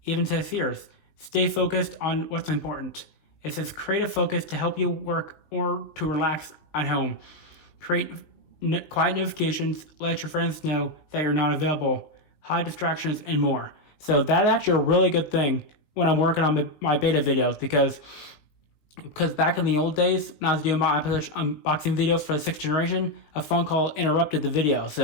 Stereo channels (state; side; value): late; right; 19 ms